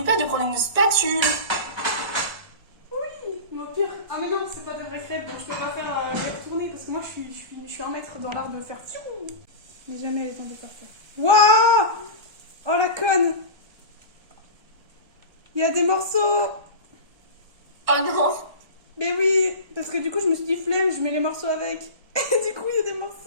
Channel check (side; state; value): left; late; 1.6 ms